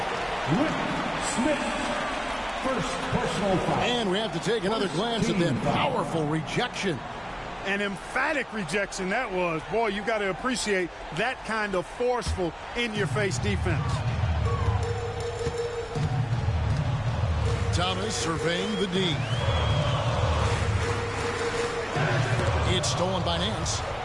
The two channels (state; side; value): identical; both; correlation 1.00